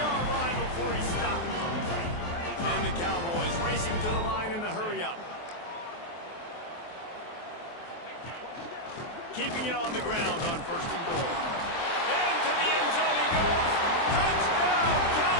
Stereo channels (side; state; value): right; late; 23 ms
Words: line before he stops. And the Cowboys racing to the line in the hurry-up. Keeping it on the ground on first and goal. Into the end zone he goes. Touchdown,